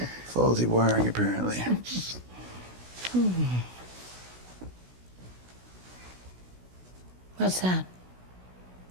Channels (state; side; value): late; left; 16 ms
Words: Faulty wiring, apparently. What's that?